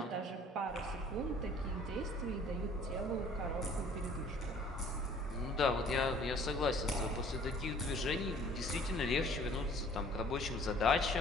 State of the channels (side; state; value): both; normal; correlation 0.54